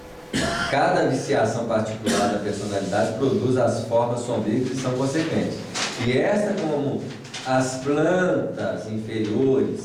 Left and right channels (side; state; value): both; identical; correlation 1.00